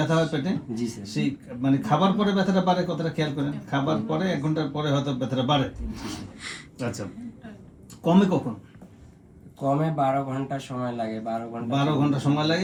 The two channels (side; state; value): both; identical; correlation 1.00